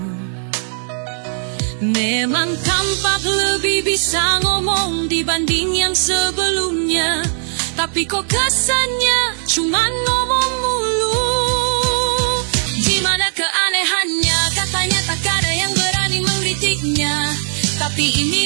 Memang tampak lebih bisa ngomong dibanding yang sebelumnya, tapi kok kesannya cuman ngomong mulu. Gimana keanehannya, katanya tak ada yang berani mengkritiknya, tapi ini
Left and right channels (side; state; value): left; silent; digital silence